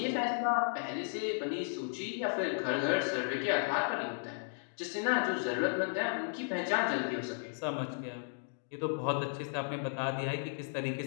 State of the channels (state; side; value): silent; right; digital silence